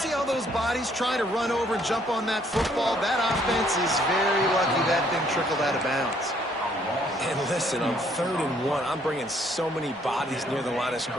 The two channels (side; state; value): both; normal; correlation 0.65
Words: all those bodies trying to run over and jump on that football? That offense is very lucky that thing trickled out of bounds. And listen, on 3rd and 1, I'm bringing so many bodies near the line of